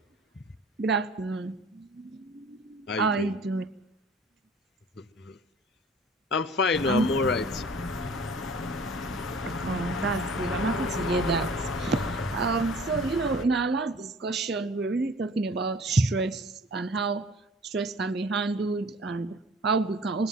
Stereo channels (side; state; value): both; normal; correlation 0.48